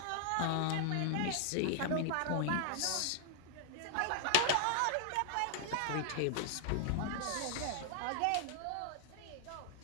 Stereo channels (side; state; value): both; different; correlation 0.00